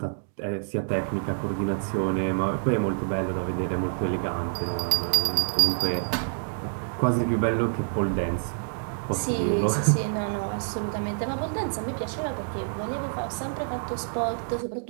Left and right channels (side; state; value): left; silent; digital silence